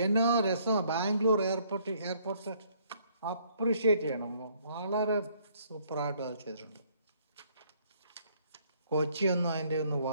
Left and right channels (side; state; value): both; inverted; correlation -0.65